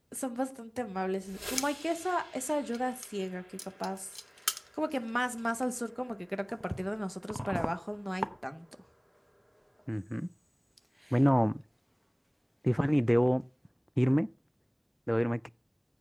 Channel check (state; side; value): identical; both; correlation 1.00